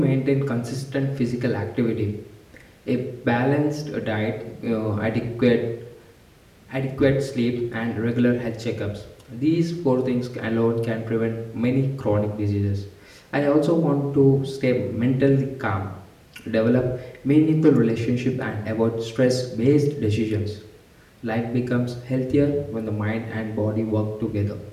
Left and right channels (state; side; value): identical; both; correlation 1.00